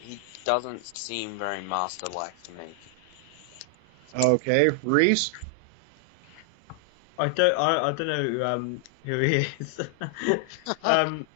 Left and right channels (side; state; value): both; normal; correlation 0.00